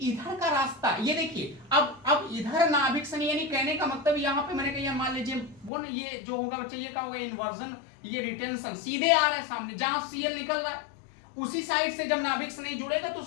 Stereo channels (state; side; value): drops out; right; at 5.7 s